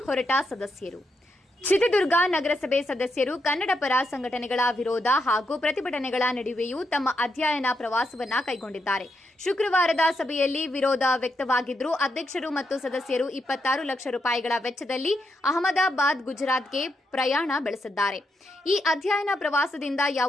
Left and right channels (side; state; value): both; normal; correlation 0.82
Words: ಹೊರಟ ಸದಸ್ಯರು. ಚಿತ್ರದುರ್ಗ ನಗರಸಭೆ ಸದಸ್ಯರು ಕನ್ನಡ ಪರ ಸಂಘಟನೆಗಳ ವಿರೋಧ ಹಾಗೂ ಪ್ರತಿಭಟನೆಗಳ ನಡುವೆಯೂ ತಮ್ಮ ಅಧ್ಯಯನ ಪ್ರವಾಸವನ್ನ ಕೈಗೊಂಡಿದ್ದಾರೆ. ಶುಕ್ರವಾರದ ಸಭೆಯಲ್ಲಿ ವಿರೋಧ ವ್ಯಕ್ತವಾಗಿದ್ದರೂ ಅಧ್ಯಕ್ಷರು ಮತ್ತು ಸದಸ್ಯರು 26 ಲಕ್ಷ ರೂಪಾಯಿಗಳ ವೆಚ್ಚದಲ್ಲಿ ಅಹಮದಾಬಾದ್, ಗುಜರಾತ್ಗೆ ಪ್ರಯಾಣ ಬೆಳೆಸಿದ್ದಾರೆ. ಈ ಅಧ್ಯಯನ ಪ್ರವಾಸದಿಂದ